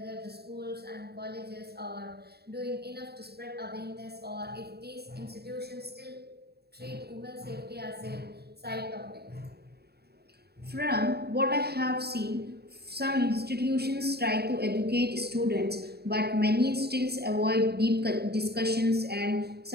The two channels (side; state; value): left; late; 0.47 ms